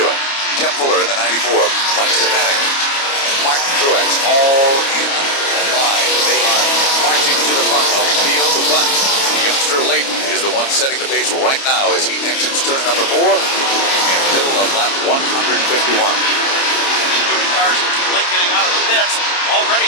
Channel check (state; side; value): late; right; 29 ms